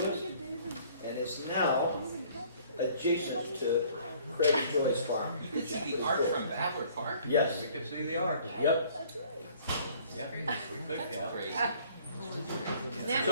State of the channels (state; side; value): inverted; both; correlation -0.56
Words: and is now adjacent to Craig and Joy's farm. You can see the arch from Babbler Park? Yes. We could see the arch. Yep. Yeah, we could, yeah. Isn't that